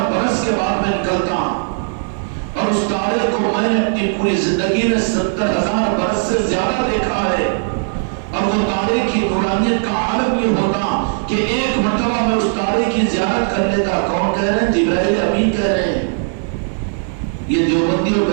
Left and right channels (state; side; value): silent; left; digital silence